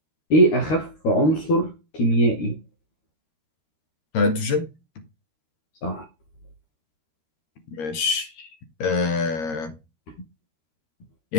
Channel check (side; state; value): right; late; 13 ms